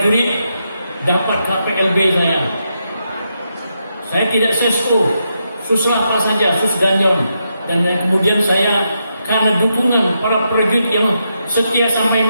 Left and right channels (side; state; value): both; inverted; correlation -0.82